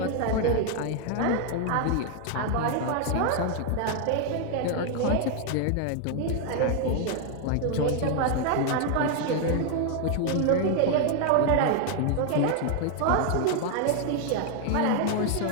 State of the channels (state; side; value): different; both; correlation 0.00